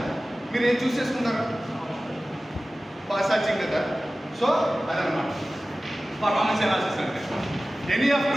మీరు ఏం చూస్ చేసుకుంటారు? ఫాస్ట్ ఛార్జింగ్ కదా. సో అదనమాట పర్ఫార్మెన్స్ అనాలిసిస్ అంటే. Any of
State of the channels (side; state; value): both; normal; correlation 0.96